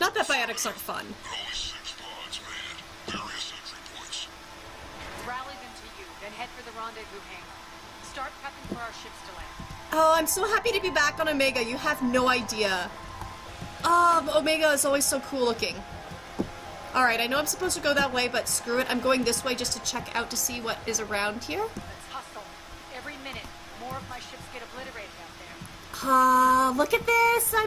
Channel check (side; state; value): both; identical; correlation 1.00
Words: Not that biotics aren't fun. Only 6 pods, man. Various entry points. Rally them to you, then head for the rendezvous hangar. Start prepping for our ships to land. Oh, I'm so happy to be back on Omega. You have no idea. Omega is always so cool looking. Alright, I know I'm supposed to go that way, but screw it. I'm going this way just to check out to see what is around here. Let's hustle. Every minute, more of my ships get obliterated out there. Look at this!